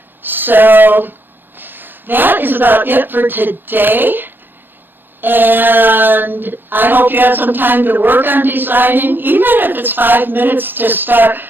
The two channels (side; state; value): left; late; 0.095 ms